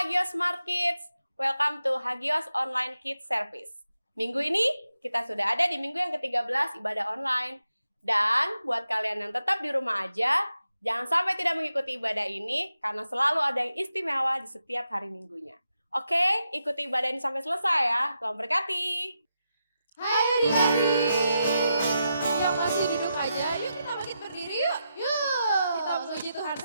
Hagios Smart Kids, welcome to Hagios Online Kids Service. Minggu ini kita sudah ada di minggu yang ke-13 ibadah online. Dan buat kalian yang tetap di rumah aja, jangan sampai tidak mengikuti ibadah ini karena selalu ada yang istimewa di setiap hari minggunya. Oke, ikuti ibadah ini sampai selesai ya. Tuhan berkati. Hai adik-adik yang masih duduk aja, yuk kita bangkit berdiri yuk. Kita memuji Tuhan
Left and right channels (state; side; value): inverted; both; correlation -0.86